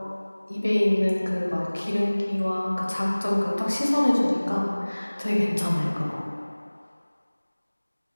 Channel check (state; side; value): inverted; both; correlation -1.00